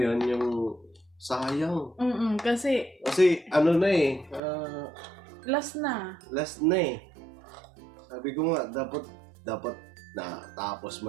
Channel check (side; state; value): left; drops out; at 4.4 s